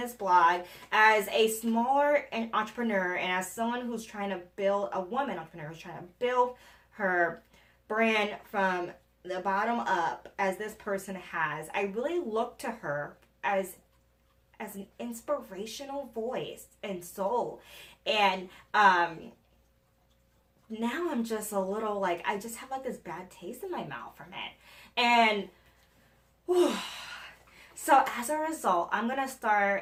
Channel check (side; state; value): both; identical; correlation 1.00